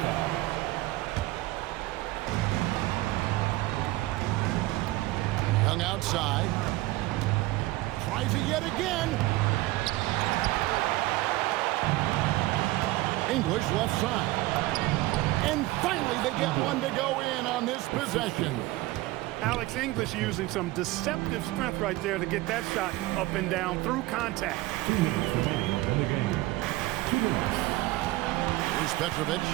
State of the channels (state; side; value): quieter; left; 18.7 dB